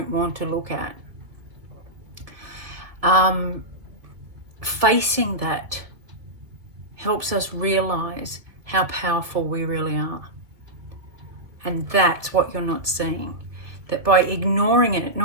want to look at. Facing that helps us realize how powerful we really are. And that's what you're not seeing. That by ignoring it,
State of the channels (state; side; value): late; left; 1.6 ms